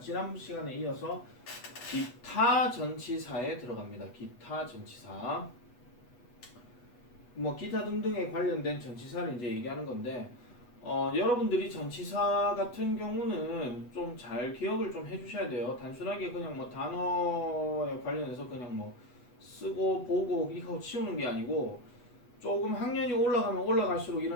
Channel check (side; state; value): right; late; 8.2 ms